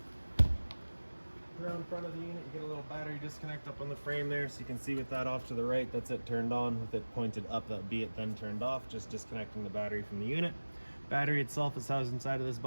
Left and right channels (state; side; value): inverted; both; correlation -1.00